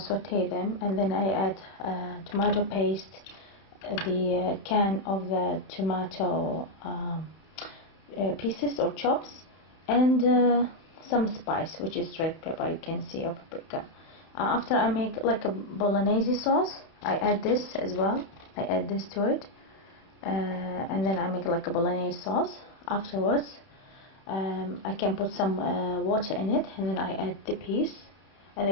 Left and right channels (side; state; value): right; late; 31 ms